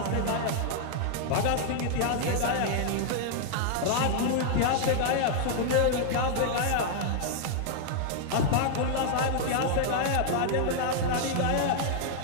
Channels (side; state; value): both; different; correlation 0.00